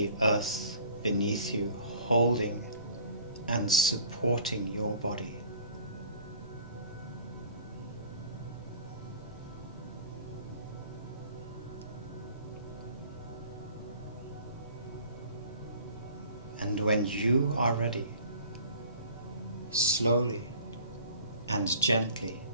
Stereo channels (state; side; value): inverted; both; correlation -0.49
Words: earth beneath you, holding and supporting your body. And when you are ready, slowly and gently